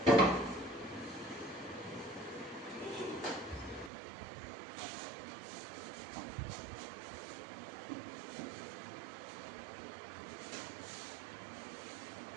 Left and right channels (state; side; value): drops out; left; at 3.9 s